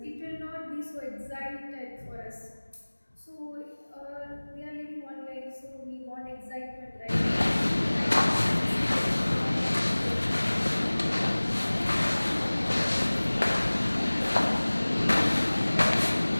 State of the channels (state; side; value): inverted; both; correlation -1.00